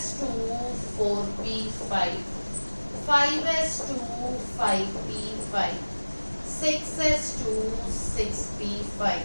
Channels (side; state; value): both; inverted; correlation -1.00